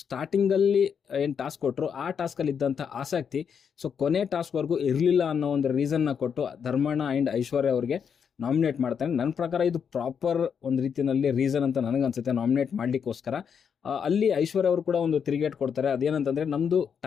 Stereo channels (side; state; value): right; quieter; 7.1 dB